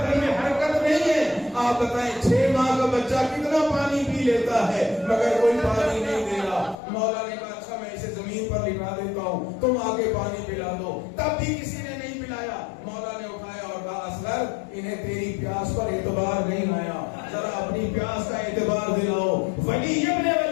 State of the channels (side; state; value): right; drops out; at 6.8 s